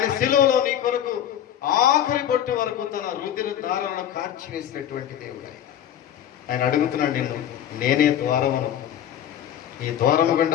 శిలువలో నీ కొరకు ఆఖరి బొట్టు వరకు తన రుధిర ధారలను కార్చివేసినటువంటి దేవుడు. ఆయన అడుగుతున్నాడు నిన్ను, నేనే ద్వారమును. ఈ ద్వారము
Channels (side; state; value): right; quieter; 10.4 dB